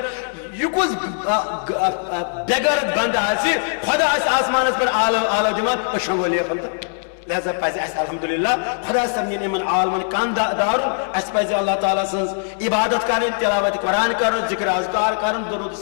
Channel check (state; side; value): silent; right; 65 dB below the other